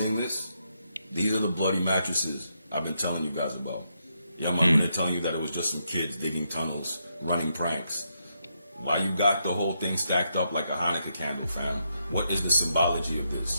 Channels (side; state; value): both; inverted; correlation -0.81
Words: this? These are the bloody mattresses I've been telling you guys about. Yeah, man, they're telling you that it was just some kids digging tunnels, running pranks. Why you got the whole thing stacked up like a Hanukkah candle, fam? What is the symbology of